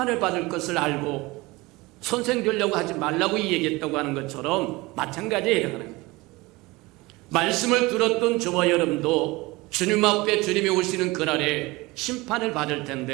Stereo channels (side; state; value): left; quieter; 22.1 dB